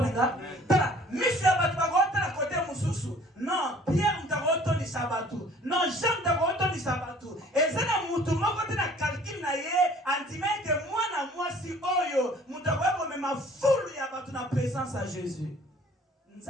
nga tala monsieur batu ba ko tala côté mususu non Pierre mtaroto ni sabatu non Jean mtaroto ni sabatu ezana mutu moko tena calcul na ye antime que mwana mwasi oyo mutakweko mema fulu ya batu na présence à Jésus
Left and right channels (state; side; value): normal; both; correlation 0.52